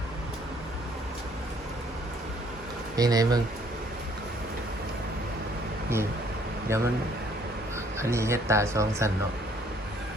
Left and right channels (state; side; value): normal; both; correlation 0.62